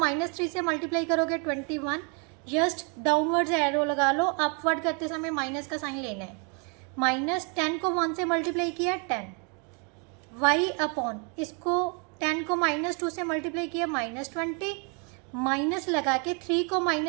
से मल्टीप्लाई करोगे 21, जस्ट डाउनवर्ड्स एरो लगा लो, अपवर्ड करते समय माइनस का साइन लेना है। -10 को 1 से मल्टीप्लाई किया 10, y अपॉन इसको 10 को -2 से मल्टीप्लाई किया -20, माइनस लगा के 3 को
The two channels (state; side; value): quieter; left; 36.1 dB